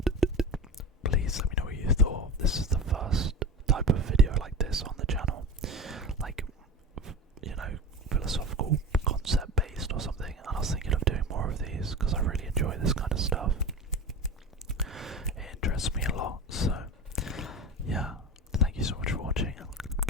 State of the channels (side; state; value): both; normal; correlation 0.30